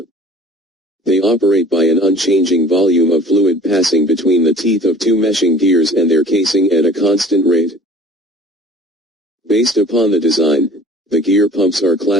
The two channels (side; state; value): both; normal; correlation 0.48